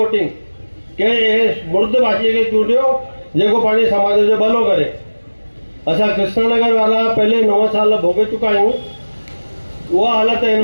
कंहिं मुर्द भाषीअ खे चूंडियो जेको पंहिंजे समाज जो भलो करे। असां कृष्णनगर वारा पहले 9 साल भोगे चुका आहियूं। उहा हालत हिन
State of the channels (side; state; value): both; inverted; correlation -1.00